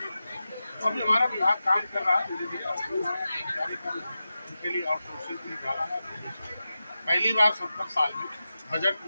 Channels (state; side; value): inverted; both; correlation -0.93